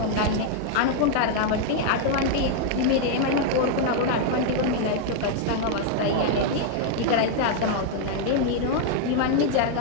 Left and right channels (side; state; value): both; different; correlation 0.00